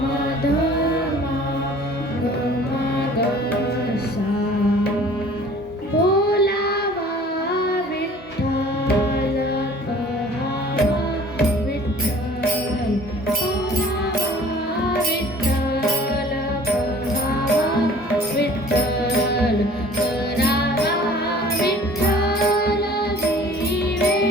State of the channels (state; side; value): normal; both; correlation 0.49